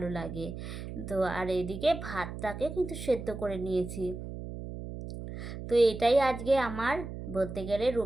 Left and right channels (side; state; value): right; noise; hum, 9 dB below the sound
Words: লাগে। তো আর এদিকে ভাতটাকে কিন্তু সেদ্ধ করে নিয়েছি। তো এটাই আজকে আমার বলতে গেলে